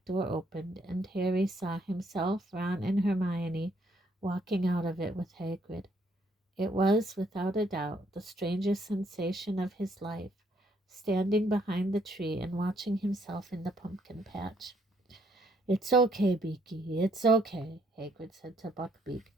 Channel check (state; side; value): normal; both; correlation 0.69